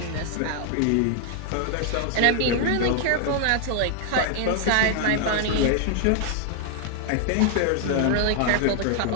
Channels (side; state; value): both; different; correlation 0.00